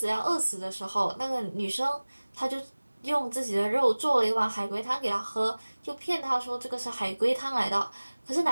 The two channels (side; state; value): both; inverted; correlation -1.00